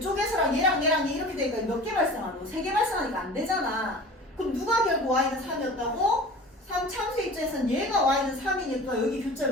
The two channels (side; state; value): both; normal; correlation 0.39